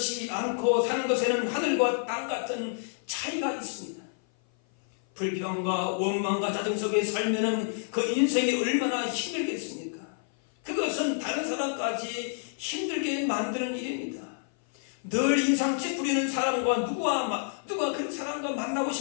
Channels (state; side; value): silent; right; 55 dB below the other